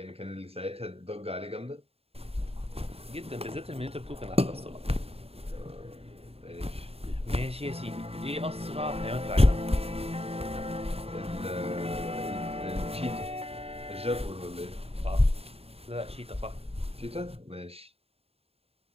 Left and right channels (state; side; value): late; left; 0.29 ms